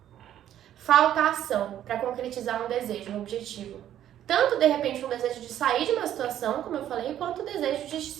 Falta ação para concretizar um desejo, um objetivo. Tanto, de repente, um desejo de sair de uma situação, como eu falei, quanto o desejo de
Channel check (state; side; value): quieter; left; 11.3 dB